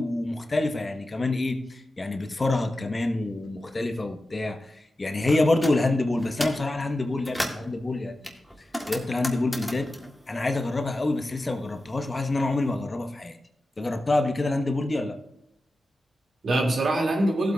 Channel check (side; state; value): both; normal; correlation 0.92